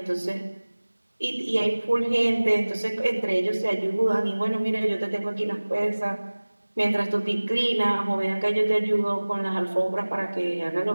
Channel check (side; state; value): both; inverted; correlation -1.00